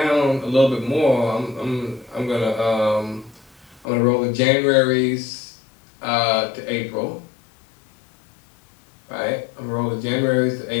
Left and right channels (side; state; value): right; drops out; at 3.9 s